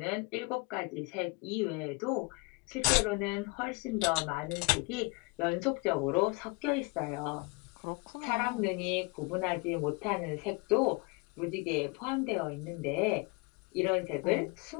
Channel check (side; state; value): right; quieter; 28.3 dB